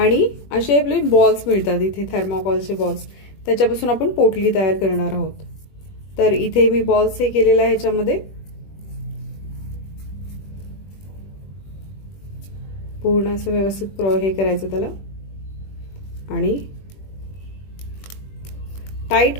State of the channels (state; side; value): late; right; 21 ms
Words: असे आपले बॉल्स मिळतात इथे, थर्माकोलचे बॉल्स, त्याच्यापासून आपण पोटली तयार करणार आहोत. तर इथे मी बॉल्स हे केलेला आहे. ह्याच्यामध्ये पूर्ण असं व्यवस्थित हे करायचं त्याला, आणि टाईट